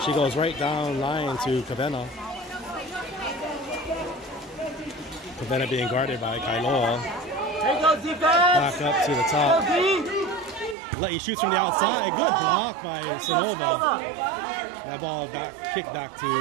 She goes right down line to Kavena. Kavena being guarded by Kailoa. Here goes defense. Back up to the top. La'i shoots from the outside. Good block by Sonova. That ball kicked back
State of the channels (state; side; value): drops out; left; at 10.8 s